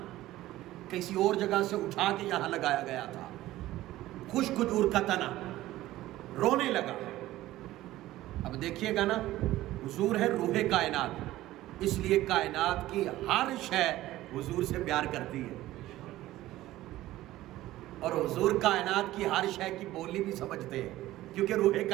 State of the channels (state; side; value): quieter; left; 15.7 dB